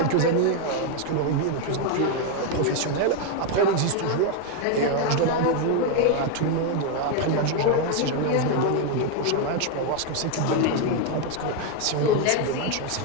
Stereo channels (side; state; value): both; different; correlation 0.01